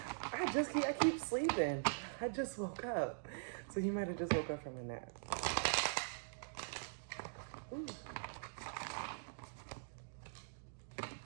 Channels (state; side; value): silent; left; digital silence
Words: I keep sleeping. I just woke up. So you might have just woke up from a nap. Ooh.